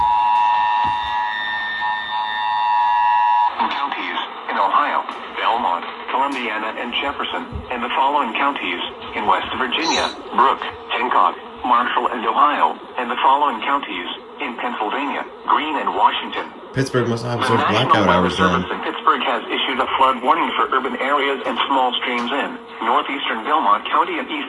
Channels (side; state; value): both; identical; correlation 1.00